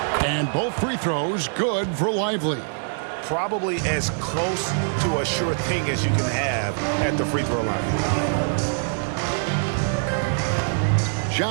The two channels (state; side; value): silent; left; 63 dB below the other